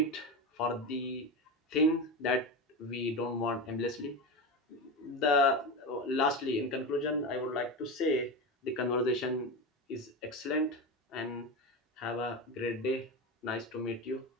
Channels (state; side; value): normal; both; correlation 0.20